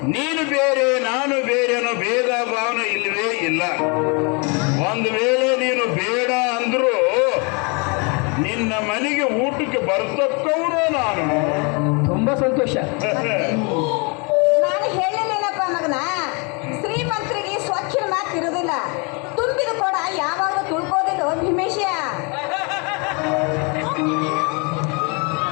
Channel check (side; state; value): right; quieter; 32.5 dB